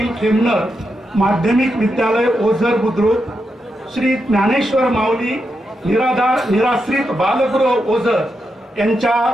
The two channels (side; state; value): both; normal; correlation 0.85